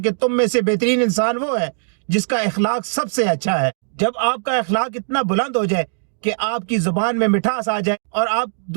کہ تم میں سے بہترین انسان وہ ہے جس کا اخلاق سب سے اچھا ہے۔ جب آپ کا اخلاق اتنا بلند ہو جائے کہ آپ کی زبان میں مٹھاس آ جائے اور آپ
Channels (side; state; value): left; silent; digital silence